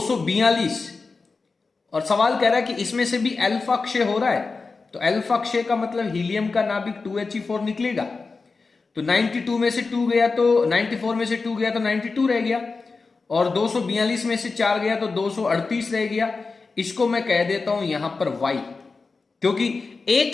और सवाल कह रहा है कि इसमें से भी अल्फा क्षय हो रहा है, तो अल्फा क्षय का मतलब हीलियम का नाभिक 2He4 निकलेगा। तो 92 में से 2 गया तो 94 में से 2 गया तो 92 रह गया, और 242 में से 4 गया तो 238 रह गया। इसको मैं कह देता हूं यहां पर Y, क्योंकि एक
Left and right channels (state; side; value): quieter; right; 4.2 dB